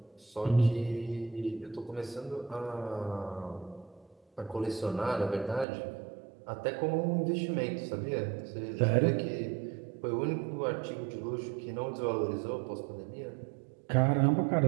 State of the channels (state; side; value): drops out; left; at 5.7 s